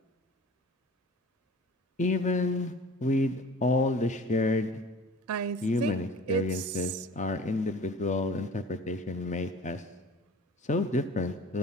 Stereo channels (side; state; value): both; normal; correlation 0.44